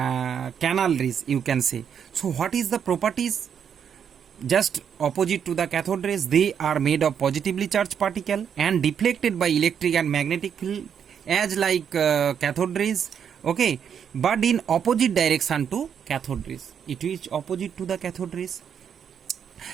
rays, you can say. So what is the properties? Just opposite to the cathode rays, they are made of positively charged particle and deflected by electric and magnetic field as like cathode rays. Okay, but in opposite direction to cathode rays, it is opposite to the cathode rays,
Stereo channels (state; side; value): quieter; left; 7.9 dB